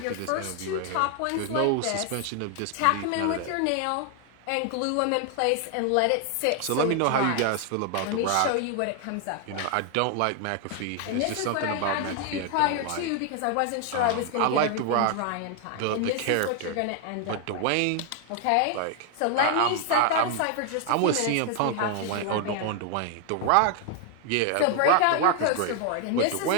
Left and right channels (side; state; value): both; different; correlation 0.00